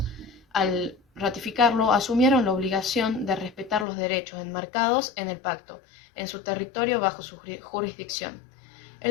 al ratificarlo, asumieron la obligación de respetar los derechos enmarcados en el pacto, en su territorio bajo su jurisdicción.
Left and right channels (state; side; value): drops out; right; at 3.9 s